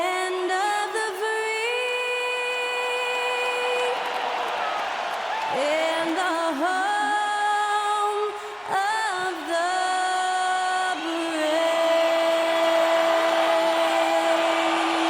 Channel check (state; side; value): identical; both; correlation 1.00